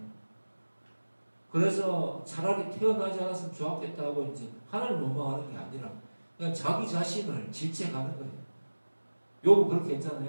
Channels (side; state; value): both; inverted; correlation -1.00